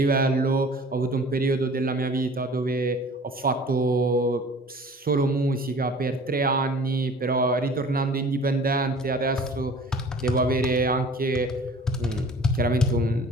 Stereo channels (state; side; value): normal; both; correlation 0.47